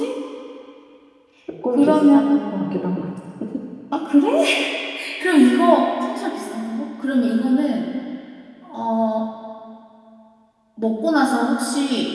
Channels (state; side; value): identical; both; correlation 1.00